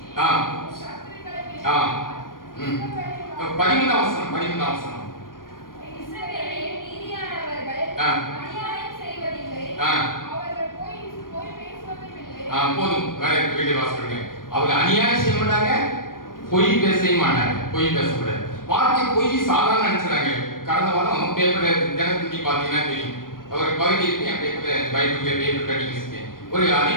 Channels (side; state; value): right; late; 0.91 ms